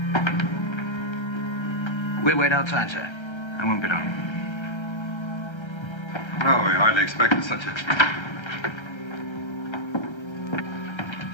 We wait outside, sir. I won't be long. Well, we hardly expected such a...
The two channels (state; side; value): late; right; 1.3 ms